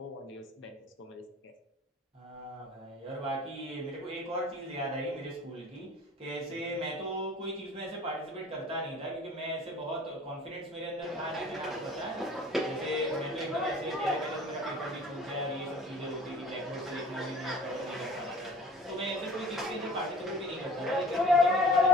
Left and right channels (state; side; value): normal; both; correlation 0.45